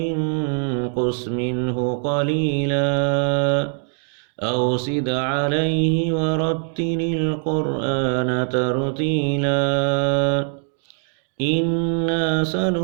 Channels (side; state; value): left; silent; 56 dB below the other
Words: منه قليلا أو زد عليه ورتل القرآن ترتيلا إنا